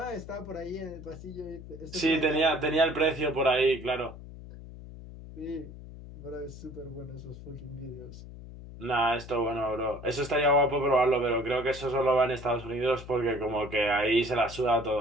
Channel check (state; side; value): noise; left; hum, 14 dB below the sound